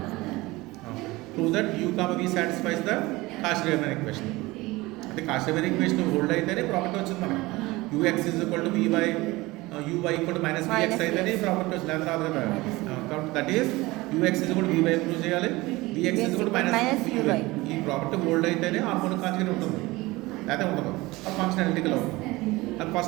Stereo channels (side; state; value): left; quieter; 20.8 dB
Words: Prove that u comma v satisfies the Cauchy Riemann equation. అంటే Cauchy Riemann equation hold అయితేనే property వచ్చింది మనకి. U x is equal to v y u y equal to minus v x అయితేనే ప్రాపర్టీ వచ్చింది. అది రాదు కదా. కాబట్టి that is u x is equal to v y prove చేయాలి, v x is equal to minus u y. ఈ ప్రాపర్టీ హోల్డ్ అయితేనే హార్మోనిక్ కాంజుగేట్ ఉంటుంది, అయితే ఉండదు. ఆ ఫంక్షన్ అనలిటికల్ అవుతుంది. అది